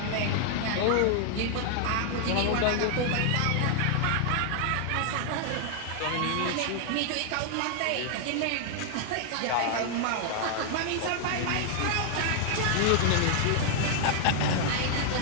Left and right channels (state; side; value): different; both; correlation 0.00